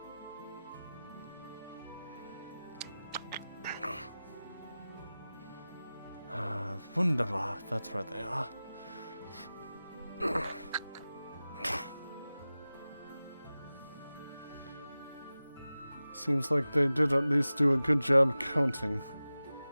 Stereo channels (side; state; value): both; inverted; correlation -0.96